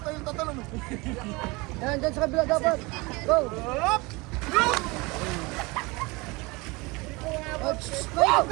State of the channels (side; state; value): left; quieter; 25.0 dB